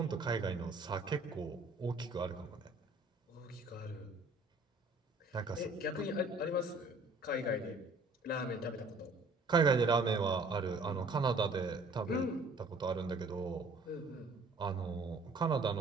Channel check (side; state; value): left; quieter; 3.1 dB